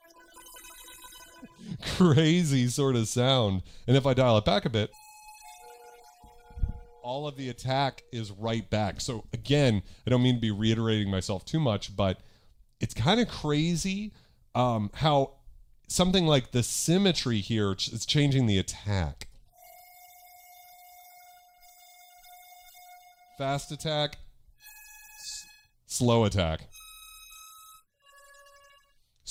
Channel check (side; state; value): both; identical; correlation 1.00